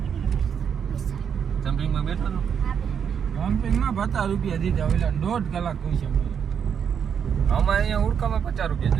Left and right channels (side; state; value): left; quieter; 7.6 dB